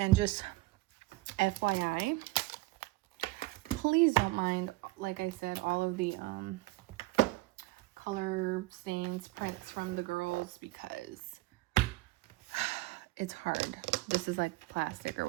just FYI, please don't mind, like I said, all of the color stains, prints from the girls, because it's hard. This is like plastic or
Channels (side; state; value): left; quieter; 20.0 dB